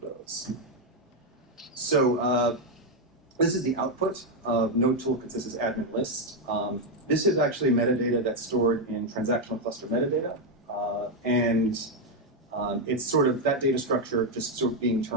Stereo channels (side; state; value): both; normal; correlation 0.04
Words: So this is the output of node tool consensus admin list. This is actually metadata that's stored in transactional cluster metadata. It's sort of that data structure just sort of being